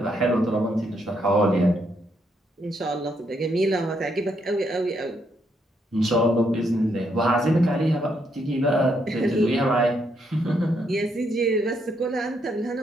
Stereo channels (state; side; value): normal; both; correlation 0.76